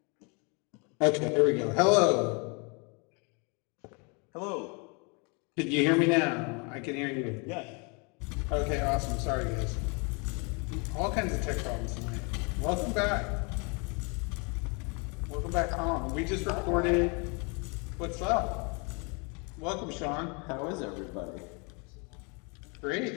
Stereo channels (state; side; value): quieter; right; 33.0 dB